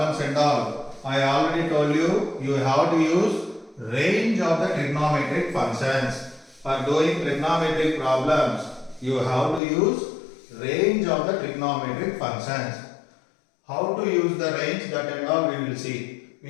and all, I already told you, you have to use range of the trigonometric functions. For doing trigonometric problems, you have to use range of the trigonometric functions. How to use the range, that and all we will see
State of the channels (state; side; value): drops out; right; at 9.6 s